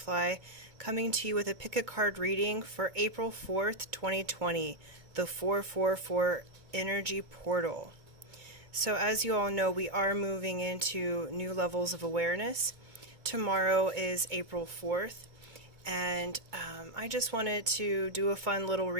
coming to you with a pick a card reading for April 4th, 2020, the 444 Energy Portal. So as you all know, we are moving into new levels of awareness. Tomorrow is April 4th, and I just wanted to do a fun little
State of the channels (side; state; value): left; late; 2.2 ms